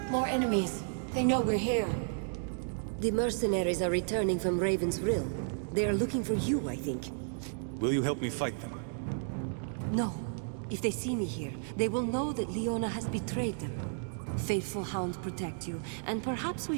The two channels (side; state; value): left; silent; digital silence